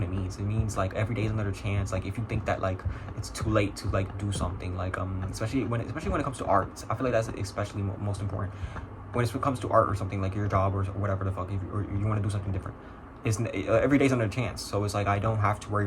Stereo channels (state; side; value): identical; both; correlation 1.00